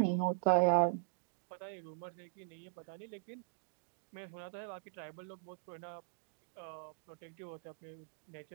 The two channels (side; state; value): left; silent; digital silence